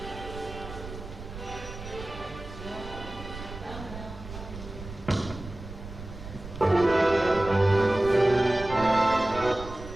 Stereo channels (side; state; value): right; noise; rumble, 12 dB below the sound